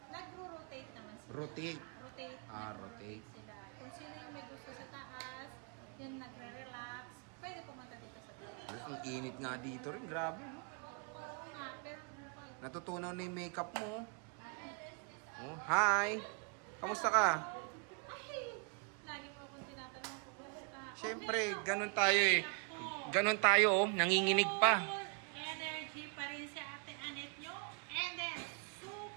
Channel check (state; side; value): quieter; left; 38.1 dB